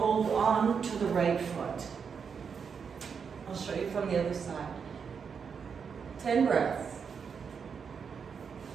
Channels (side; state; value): left; quieter; 6.3 dB